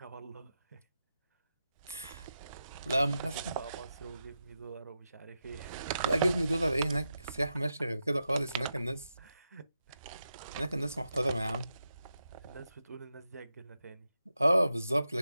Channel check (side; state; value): both; inverted; correlation -0.88